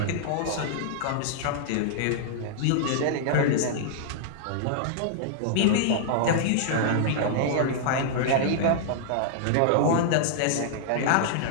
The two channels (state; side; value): different; both; correlation -0.01